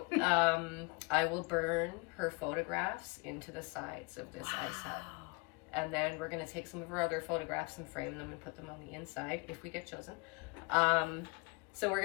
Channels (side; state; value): right; quieter; 28.0 dB